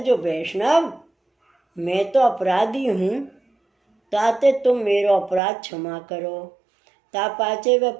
वैष्णव मैं तो अपराधी हूँ, ताते तुम मेरो अपराध क्षमा करो। ता पाचे वे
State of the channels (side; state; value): left; drops out; at 5.4 s